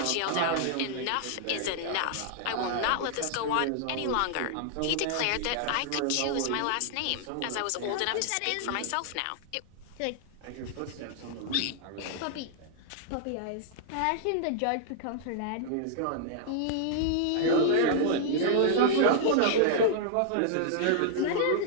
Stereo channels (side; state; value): both; different; correlation -0.01